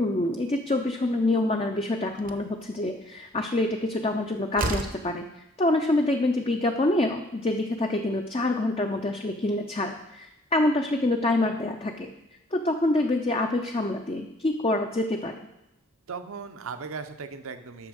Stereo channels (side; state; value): both; normal; correlation 0.60